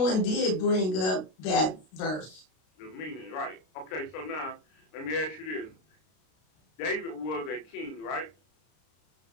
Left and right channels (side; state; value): right; late; 32 ms